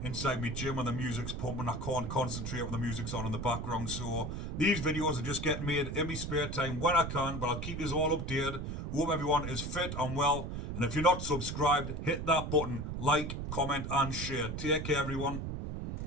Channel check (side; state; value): right; noise; rumble, 5 dB below the sound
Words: inside my gym when the music's pumping, I can't concentrate when the music's on in the background. So these videos are just getting made in my spare time when I can, but I'll keep you all updated. Hope everyone is fit and well. And if you're not subscribed, hit that button, like, comment and share. Take care, everyone.